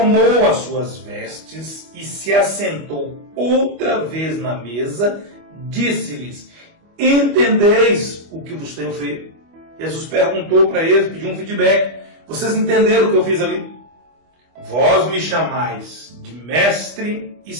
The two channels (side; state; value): left; late; 25 ms